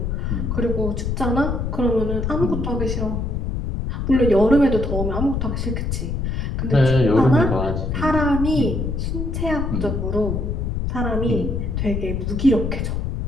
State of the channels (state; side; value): noise; left; rumble, 2 dB below the sound